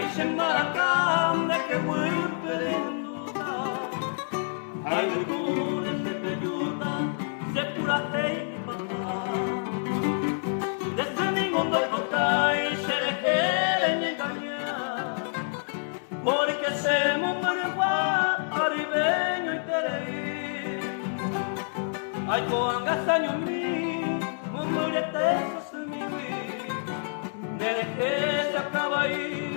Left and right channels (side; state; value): right; silent; 60 dB below the other